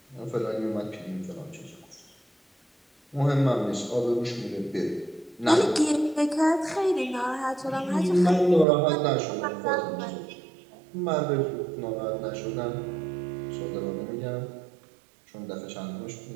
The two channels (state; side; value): drops out; left; at 8.7 s